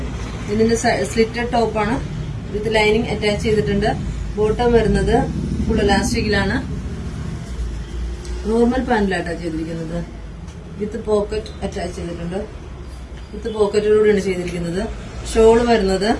ഇതിന്റെ സ്ലിറ്റഡ് ടോപ്പാണ്. വിത്ത് ലൈനിങ് അറ്റാച്ച് ചെയ്തിട്ടുണ്ട്. ബോട്ടം വരുന്നത് ഫുൾ ഇലാസ്റ്റിക്കിലാണ്. നോർമൽ പാന്റിലായിട്ടാണ് ചെയ്തിരിക്കുന്നത്. വിത്ത് പോക്കറ്റ് അറ്റാച്ച് ചെയ്തിട്ടുണ്ട്. വിത്ത് പോക്കറ്റോടുകൂടിയാണ് ചെയ്തിരിക്കുന്നത്. ഷോള് വരുന്നത്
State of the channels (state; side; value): identical; both; correlation 1.00